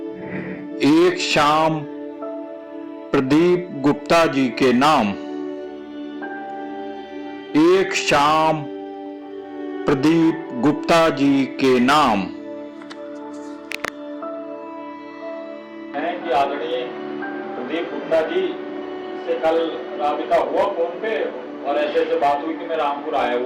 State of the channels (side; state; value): both; identical; correlation 1.00